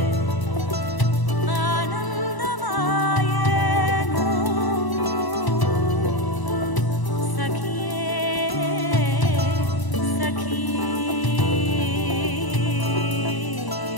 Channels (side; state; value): right; late; 1.0 ms